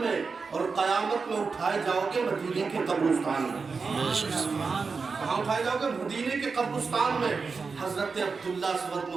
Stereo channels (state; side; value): quieter; left; 4.8 dB